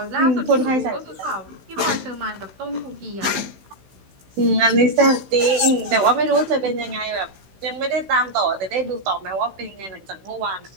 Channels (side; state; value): left; late; 16 ms